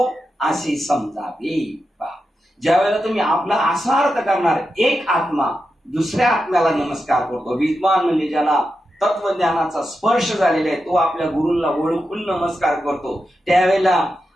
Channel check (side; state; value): both; normal; correlation 0.89